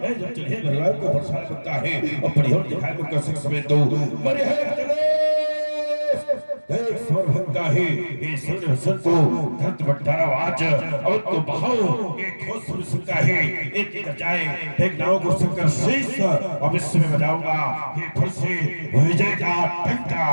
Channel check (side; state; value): both; inverted; correlation -1.00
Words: जब चलिए भगवान को परेशान करता है और परिहोर दिखाई को कर सकते तो मरे है एक स्वर भक्ता है ये सुन हसन को धरत बट्टारा आज और तो बहाओ एक ठोस सुन सकता है एक जाए एक नाव को संकर शीश अब इसमें बजाऊंगा ये फिर से विजय का घंटा।